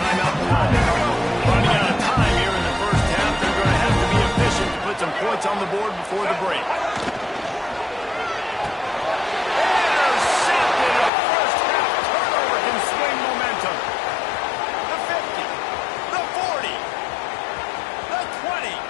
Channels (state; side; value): drops out; right; at 11.1 s